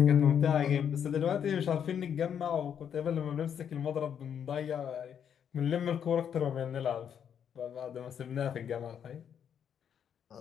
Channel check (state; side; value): quieter; right; 8.4 dB